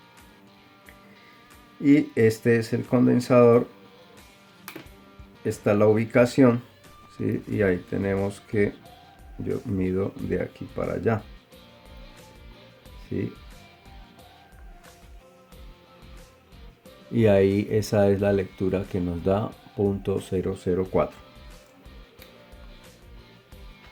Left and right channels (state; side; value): identical; both; correlation 1.00